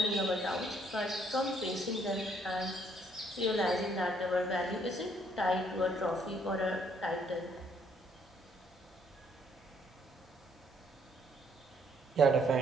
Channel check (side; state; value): both; normal; correlation 0.67